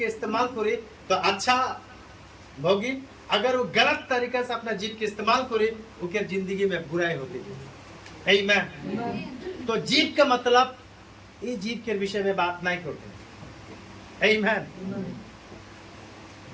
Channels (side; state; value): both; identical; correlation 1.00